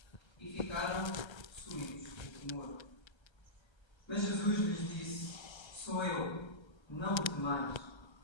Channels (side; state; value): right; late; 1.3 ms